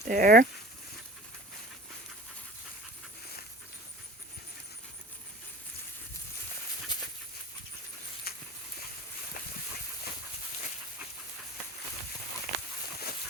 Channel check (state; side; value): normal; both; correlation 0.40